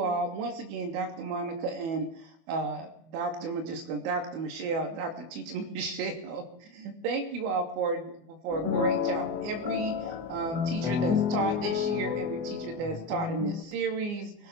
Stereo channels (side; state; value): left; late; 24 ms